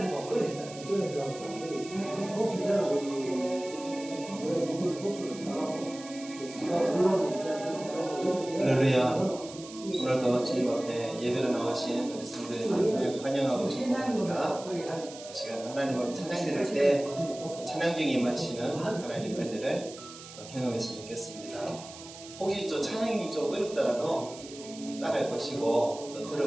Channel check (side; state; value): right; noise; hiss, 15 dB below the sound